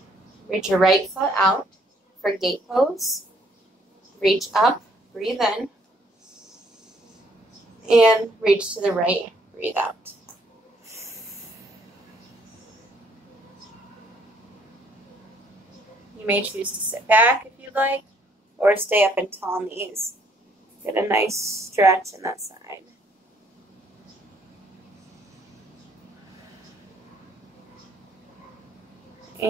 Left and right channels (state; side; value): normal; both; correlation 0.66